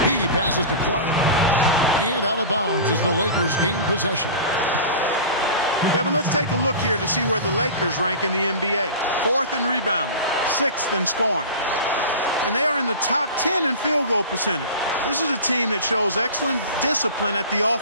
He passes to Clark, and out of bounds as the Lakers gain possession. Kevin, let's take a look here to see where the Lakers rank in the NBA. 4th in rebounding, 6th in scoring. And they are in the top 10 in field goal percentage. This is a team that shows excellent discipline at the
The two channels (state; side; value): inverted; both; correlation -0.33